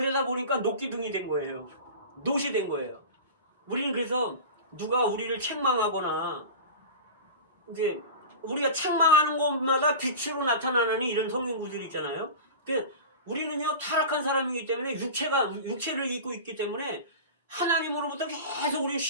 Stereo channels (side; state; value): both; inverted; correlation -0.32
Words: 보니까 녹기둥이 된 거예요. 노시 된 거예요. 우리는 그래서 누가 우리를 책망하거나 이제 우리가 책망하는 것마다 빛으로 나타나는 이런 성경구들이 있잖아요. 우리는요 타락한 사람이기 때문에 육체를 입고 있기 때문에 하나님으로부터 계속 우리는